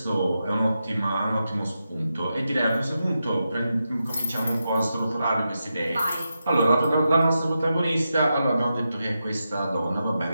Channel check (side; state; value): both; inverted; correlation -0.88